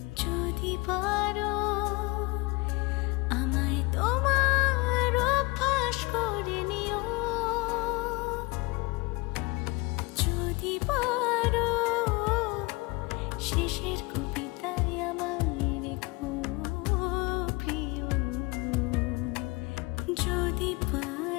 যদি পারো আমায় তোমার অভ্যাস করে নিও, যদি পারো শেষের কবিতায় আমায় রেখো প্রিয়, যদি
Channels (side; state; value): right; quieter; 25.0 dB